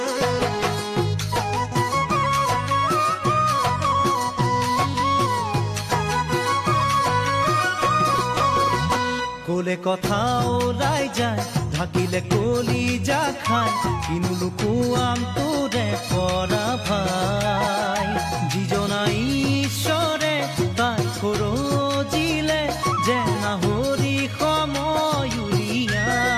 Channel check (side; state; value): both; identical; correlation 1.00